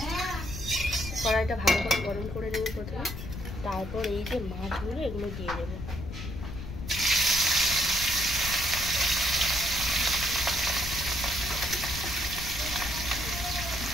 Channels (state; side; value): noise; left; rumble, 8 dB below the sound